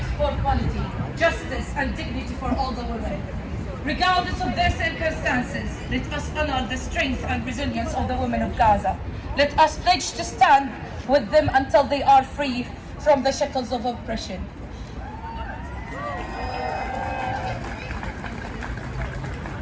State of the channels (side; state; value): both; identical; correlation 1.00